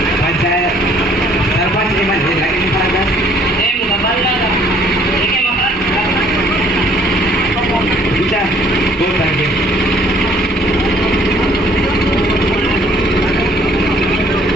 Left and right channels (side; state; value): both; normal; correlation 0.60